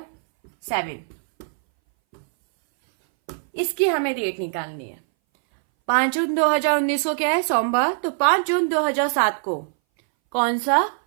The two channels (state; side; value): silent; left; 61 dB below the other